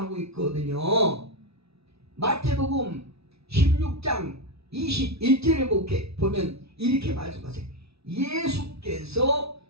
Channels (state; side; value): late; left; 0.78 ms